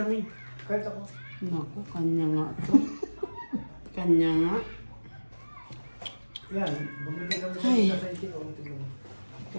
Kahit ako. Naku, kanya nga to. Kanya nga. Yan, bumili lang Ay. sa site ko.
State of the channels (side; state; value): both; inverted; correlation -1.00